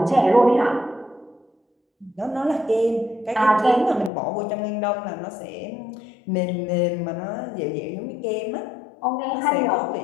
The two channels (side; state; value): right; drops out; at 4.1 s